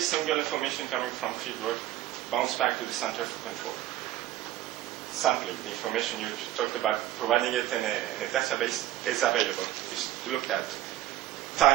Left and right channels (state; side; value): quieter; left; 13.8 dB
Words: information coming from fieldwork bounced back to the Center for Control. Sampling, the information you talked about, providing it in a database is available. It's looked at.